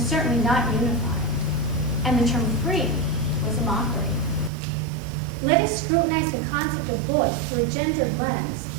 certainly not unified, and the term free was a mockery. Let us scrutinize the concept of voice through a gendered lens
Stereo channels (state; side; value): drops out; left; at 4.5 s